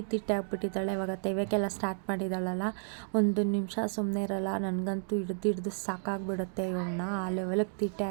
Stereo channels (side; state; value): left; silent; digital silence